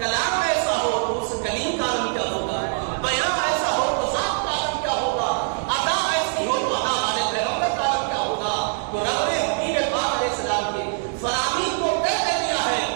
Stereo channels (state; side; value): silent; left; 55 dB below the other